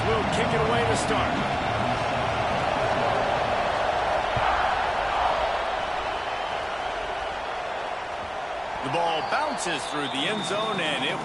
kick it away to start. The ball bounces through the end zone, and it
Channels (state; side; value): identical; both; correlation 1.00